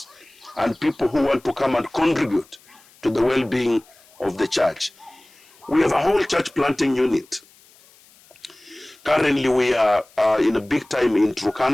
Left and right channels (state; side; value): noise; left; hiss, 28 dB below the sound